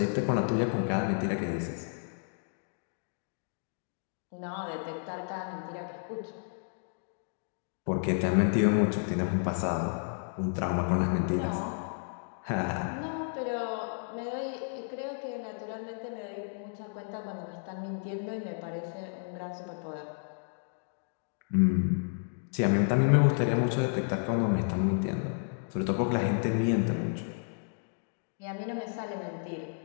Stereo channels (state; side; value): silent; right; digital silence